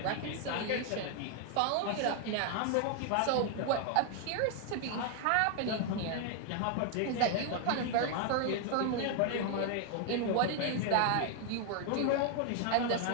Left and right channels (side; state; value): both; different; correlation 0.00